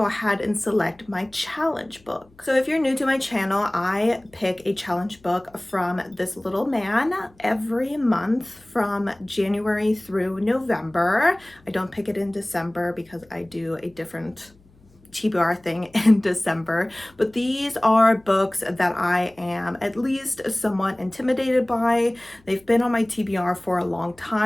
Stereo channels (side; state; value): left; noise; hum, 30 dB below the sound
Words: ahead and select my challenge book. So if you're new to my channel, I pick a challenge book from this little man every month from January through November. I don't pick it in December because I do a different TBR thing in December, but these are books that I am at least somewhat intimidated by. They've been on my TBR for a long